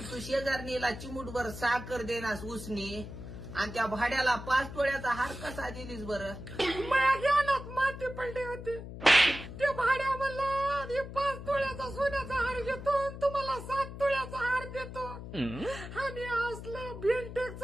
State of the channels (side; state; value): left; noise; hum, 10 dB below the sound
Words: तू शेजारणीला चिमूटभर साखर देनास उसनी आणि त्या भाड्याला 5 तोळ्याचा हार कसा दिलीस बरं? माझ्या ज्ञानात माती पडली होती. ते भाड्या म्हणला 5 तोळ्याचा सोन्याचा हार घेतो तुम्हाला 7 तोळ्याचा हार देतो आणि असलं